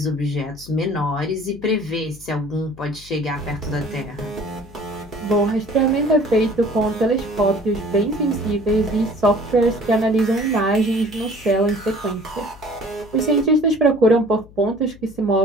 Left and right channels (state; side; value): noise; left; hum, 22 dB below the sound